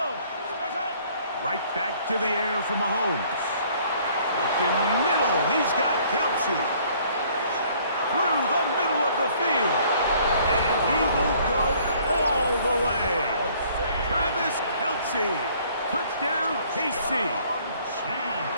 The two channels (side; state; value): both; inverted; correlation -0.59